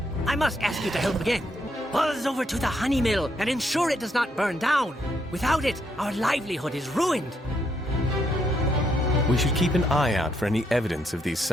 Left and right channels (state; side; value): normal; both; correlation 0.75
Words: I must ask you to help again. Buzz over to the honey mill and ensure it does not burn down. Without it, our livelihood is ruined. We should keep an eye out for any evidence of these